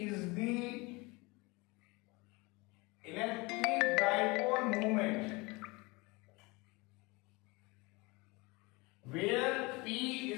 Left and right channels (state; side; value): quieter; right; 25.3 dB